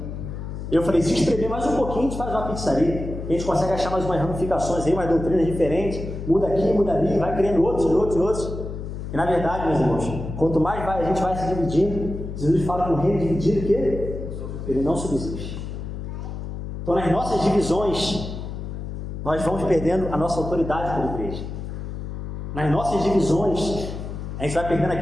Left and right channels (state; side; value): noise; left; hum, 7 dB below the sound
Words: Eu falei: se espremer mais um pouquinho, a gente faz uma pizzaria. A gente consegue achar mais umas ramificações aí, umas doutrinas diferentes, muda aqui, muda ali, vai criando outros. E na verdade, meus irmãos, quanto mais a gente vai se dividindo, Jesus fala que um reino dividido, que ele não subsiste. Então, nas nossas divisões, nós vamos perdendo a nossa autoridade como igreja. nas nossas divisões, a gente vai perdendo